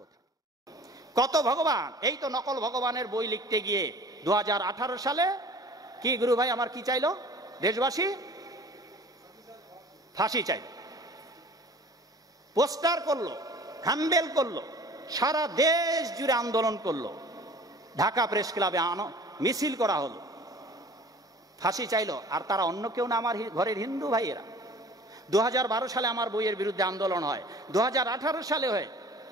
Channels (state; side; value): normal; both; correlation 0.46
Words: থাকে। কত ভগবান, এই তো নকল ভগবানের বই লিখতে গিয়ে 2018 সালে কি গুরু ভাই আমার কি চাইলো দেশবাসী? ফাঁসি চাইল, পোস্টার করলো, হ্যান্ডেল করলো, সারা দেশ জুড়ে আন্দোলন করলো, ঢাকা প্রেস ক্লাবে মিছিল করা হলো, ফাঁসি চাইলো। আর তারা অন্য কেউ না, আমার ঘরের হিন্দু ভাইয়েরা। 2012 সালে আমার বইয়ের বিরুদ্ধে আন্দোলন হয়, 2018 সালে হয়,